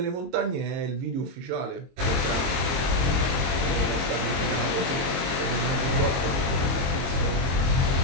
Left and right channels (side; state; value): left; late; 22 ms